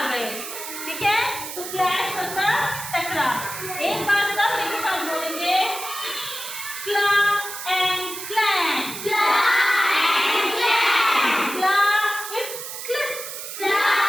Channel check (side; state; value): right; noise; hiss, 8 dB below the sound